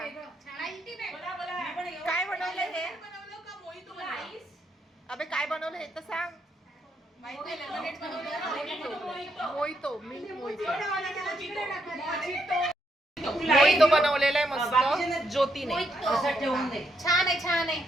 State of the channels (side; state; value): both; normal; correlation 0.78